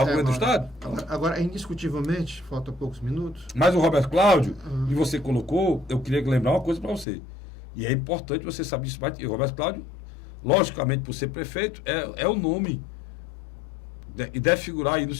governo do Estado? Agora, indiscutivelmente, falta poucos minutos. Mas o Roberto Cláudio, e você colocou, eu queria lembrar uma coisa para você. E é importante você saber isso. O Roberto Cláudio, logicamente, por ser prefeito, é o nome. E deve figurar aí no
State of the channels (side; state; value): right; drops out; at 7.1 s